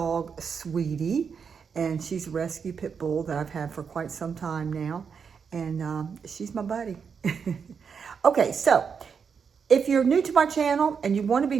Sweetie, and she's a rescue pit bull that I've had for quite some time now, and she's my buddy. Okay, so if you're new to my channel and you want to be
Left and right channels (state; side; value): quieter; left; 6.3 dB